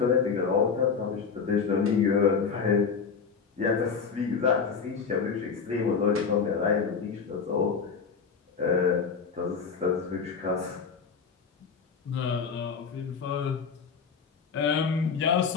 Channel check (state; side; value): quieter; right; 5.8 dB